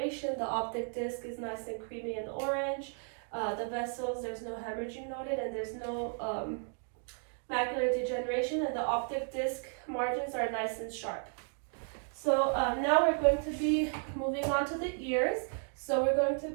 The optic disc is nice and creamy and orange. The vessels, there's no hemorrhaging noted, and there's no macular degeneration, and the optic disc margins are nice and sharp. So now we're going to be moving on to the ears. So we're going to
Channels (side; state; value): left; silent; 55 dB below the other